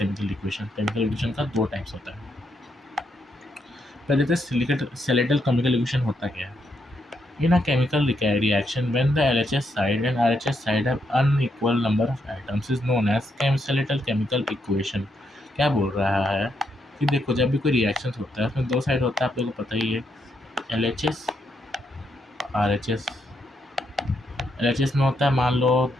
equation. Chemical equation का दो टाइप्स होता है। पहले तो स्केलेटल केमिकल इक्वेशन होता क्या है। In a chemical reaction, when the LHS side and RHS side have unequal number of atoms is known as skeletal chemical equation। क्या बोल रहा है कि देखो जब भी कोई रिएक्शन होता है उसमें दो साइड होता है, आप लोगों को पता ही है, LHS RHS। LHS में होता है, मान लो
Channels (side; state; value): both; normal; correlation 0.78